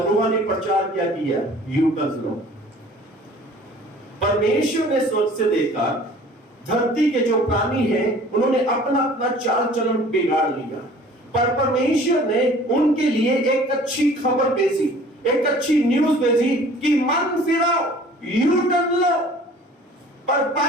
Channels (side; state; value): both; normal; correlation 0.49